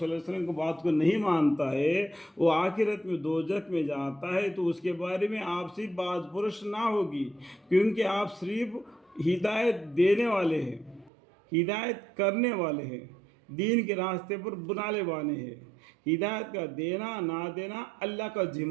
اللہ علیہ وسلم کو بات کو نہیں مانتا ہے وہ آخرت میں دوزخ میں جاتا ہے، تو اس کے بارے میں آپ سے باز پرس نہ ہوگی، کیونکہ آپ صرف ہدایت دینے والے ہیں، ہدایت کرنے والے ہیں، دین کے راستے پر بنانے والے ہیں۔ ہدایت کا دینا نہ دینا اللہ کا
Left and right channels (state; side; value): drops out; left; at 11.1 s